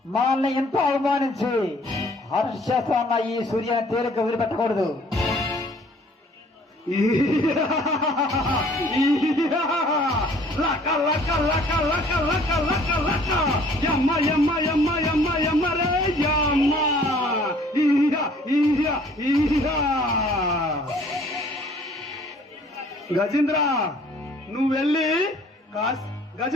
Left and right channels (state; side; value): normal; both; correlation 0.56